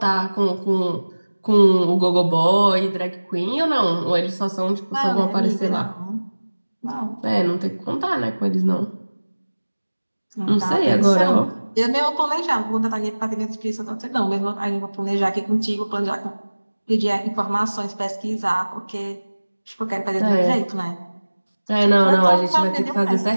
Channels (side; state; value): both; inverted; correlation -1.00